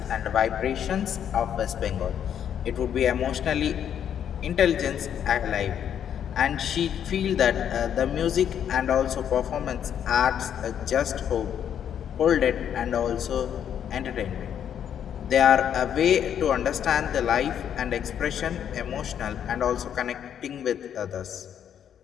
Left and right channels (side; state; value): right; quieter; 9.1 dB